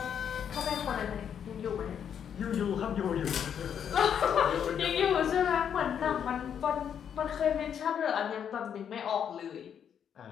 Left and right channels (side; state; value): right; quieter; 8.4 dB